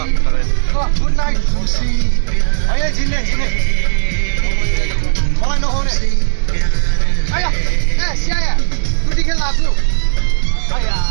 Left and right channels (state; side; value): silent; left; digital silence